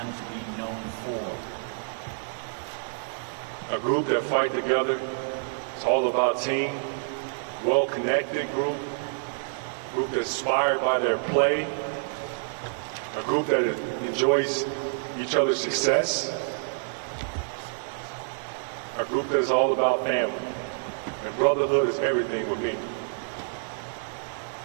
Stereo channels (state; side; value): silent; left; digital silence